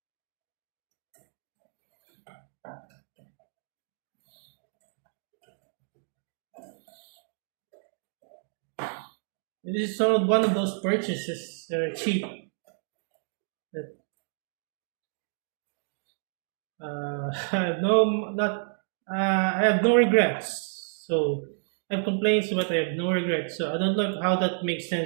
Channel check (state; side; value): silent; left; digital silence